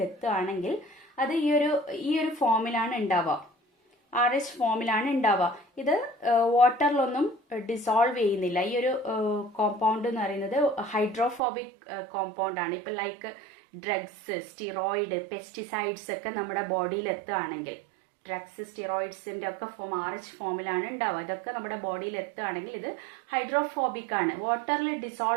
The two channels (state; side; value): drops out; left; at 11.4 s